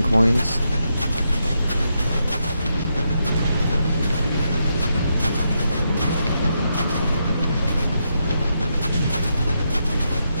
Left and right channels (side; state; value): both; inverted; correlation -0.82